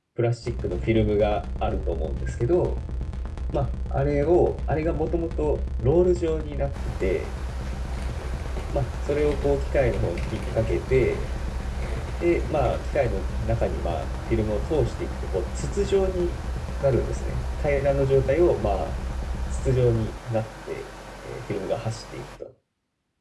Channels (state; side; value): identical; both; correlation 1.00